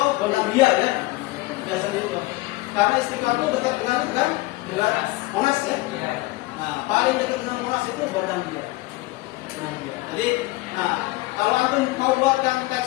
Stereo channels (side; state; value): right; quieter; 20.6 dB